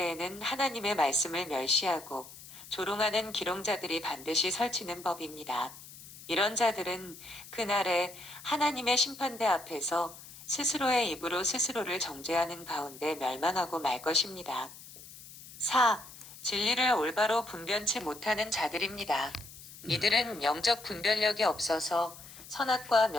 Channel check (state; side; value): noise; left; hiss, 17 dB below the sound